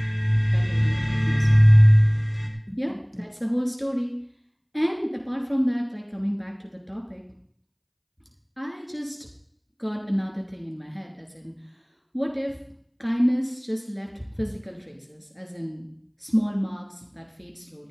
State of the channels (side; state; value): both; identical; correlation 1.00